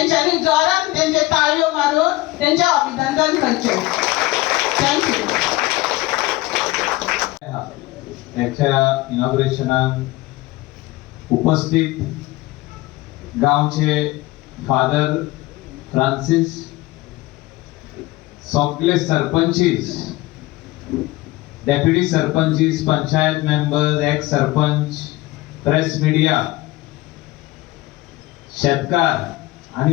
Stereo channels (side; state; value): right; quieter; 19.1 dB